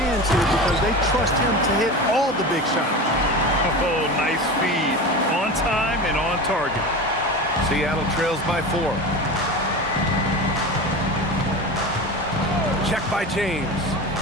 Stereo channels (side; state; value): both; normal; correlation 0.28